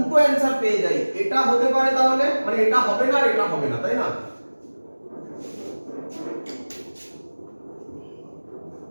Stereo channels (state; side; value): inverted; both; correlation -1.00